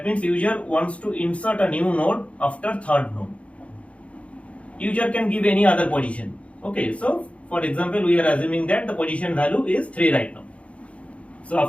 means user wants to insert a new node after third node. User can give any other position. Okay, so for example, we are assuming that the position value is 3 right now. So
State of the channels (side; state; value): right; late; 0.063 ms